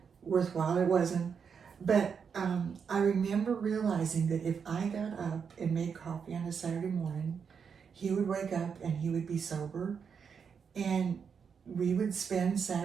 worthwhile. It wasn't. But I remember realizing that if I got up and made coffee on a Saturday morning, he would wake up and he would be sober, and we would spend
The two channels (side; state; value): left; quieter; 6.5 dB